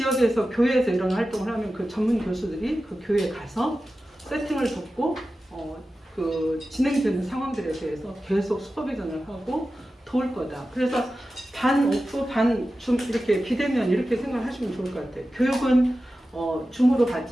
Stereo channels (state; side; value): normal; both; correlation 0.94